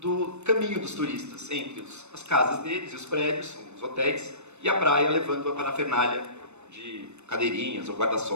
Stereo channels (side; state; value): left; late; 0.82 ms